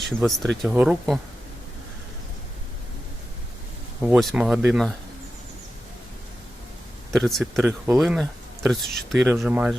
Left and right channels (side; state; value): both; normal; correlation 0.92